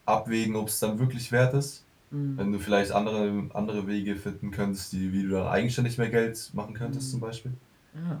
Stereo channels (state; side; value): identical; both; correlation 1.00